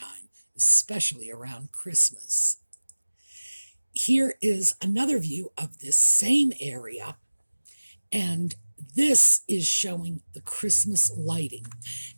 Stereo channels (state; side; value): inverted; both; correlation -1.00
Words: especially around Christmas. Here is another view of this same area, and this is showing the Christmas lighting.